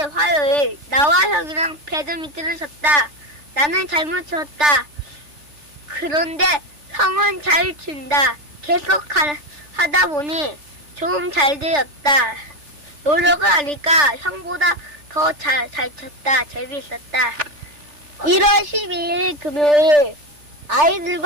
화요일. 나와 형이랑 배드민턴을 쳤다. 나는 잘못 쳤다. 그런데 형은 잘 친다. 계속 하다 보니 좀 잘 되었다. 노력을 하니까 형보다 더 잘 쳤다. 재미있었다. 1월 12일 금요일.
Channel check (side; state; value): left; late; 3.4 ms